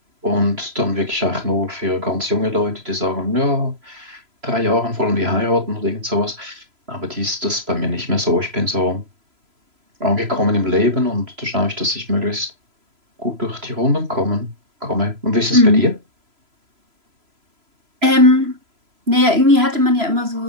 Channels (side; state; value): left; late; 3.0 ms